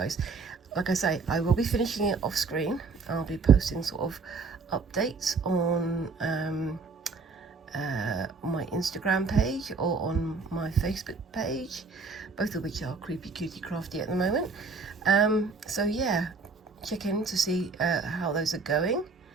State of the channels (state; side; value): quieter; left; 4.4 dB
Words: Like I say, I will be finishing it off screen. I'll be posting sort of updates on my Instagram page or on my Facebook page, both of which are Creepy Cutie Crafty at the moment. So yeah, check in to see how those are going,